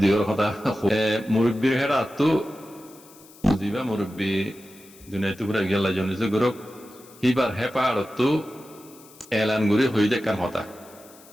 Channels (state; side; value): noise; left; hiss, 23 dB below the sound